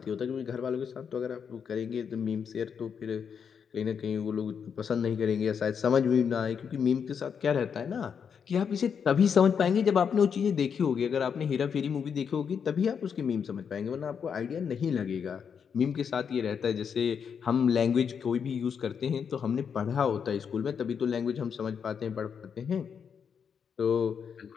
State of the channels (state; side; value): quieter; right; 7.0 dB